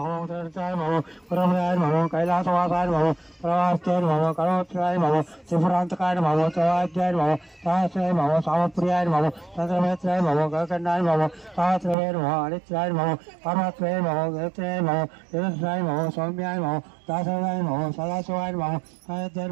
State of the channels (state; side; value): drops out; left; at 12.0 s